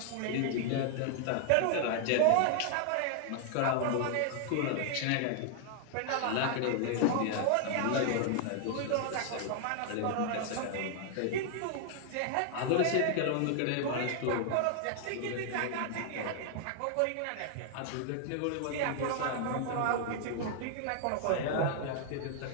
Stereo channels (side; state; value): both; different; correlation 0.00